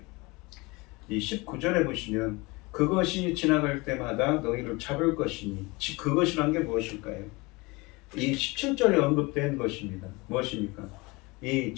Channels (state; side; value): quieter; right; 24.9 dB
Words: 이 19절에 보시면 그것이 지나갈 때마다 너희를 잡을 것이니 그것이란 게 무엇일까요? 이 17절에 언급된 것입니다. 무엇입니까? 이